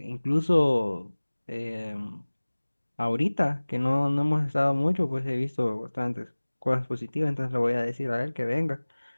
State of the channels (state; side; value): inverted; both; correlation -1.00